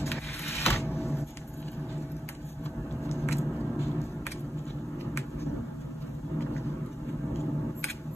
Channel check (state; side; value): normal; both; correlation 0.90